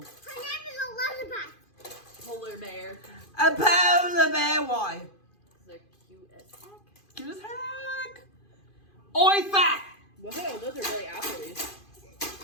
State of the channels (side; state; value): right; late; 2.5 ms